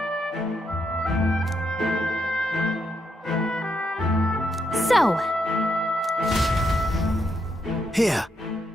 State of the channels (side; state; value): both; normal; correlation 0.79